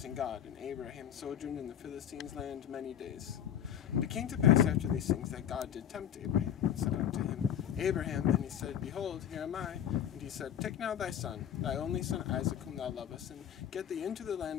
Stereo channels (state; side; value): quieter; right; 9.8 dB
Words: God. And Abraham sojourned in the Philistines' land many days. And it came to pass after these things that God did tempt Abraham, and said unto him, Abraham, and he said, Behold, here am I. And he said, Take now thy son, thy only son Isaac, whom thou lovest, and get thee into the